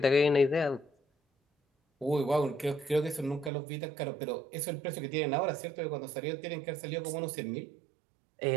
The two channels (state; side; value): drops out; left; at 3.5 s